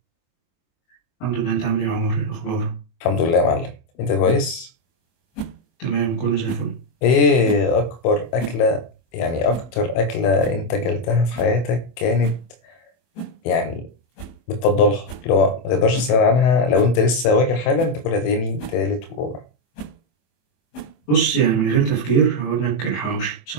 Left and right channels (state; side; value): late; right; 24 ms